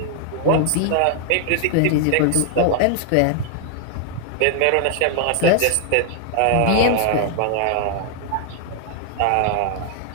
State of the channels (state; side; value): different; both; correlation 0.00